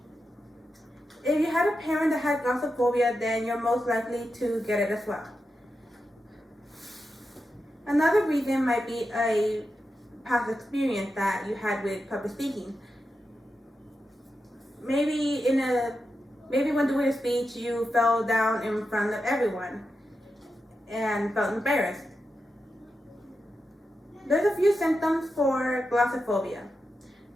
If you had a parent that had glossophobia, then you're most likely to get it as well. Another reason might be a past experience that you had with public speaking. Maybe when doing a speech, you fell down in front of everyone and felt embarrassed. There's a few symptoms for glossophobia.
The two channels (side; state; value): both; normal; correlation 0.89